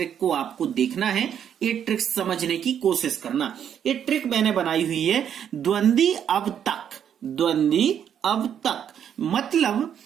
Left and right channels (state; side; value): quieter; left; 8.9 dB